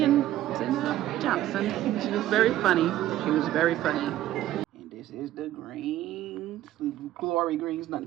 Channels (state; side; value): quieter; left; 13.6 dB